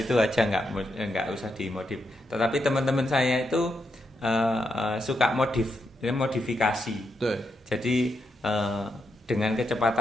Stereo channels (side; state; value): both; normal; correlation 0.82